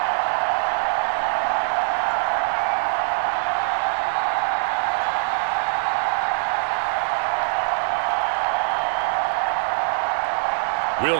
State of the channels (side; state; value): left; silent; digital silence